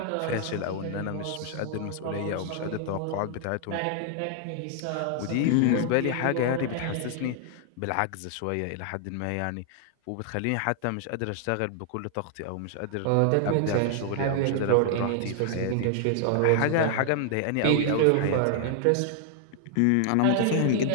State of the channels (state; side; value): different; both; correlation -0.01